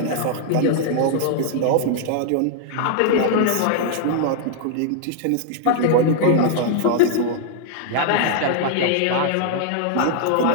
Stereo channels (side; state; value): both; different; correlation -0.01